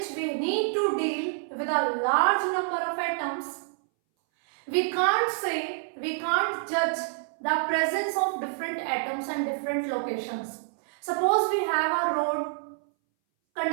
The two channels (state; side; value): silent; left; 60 dB below the other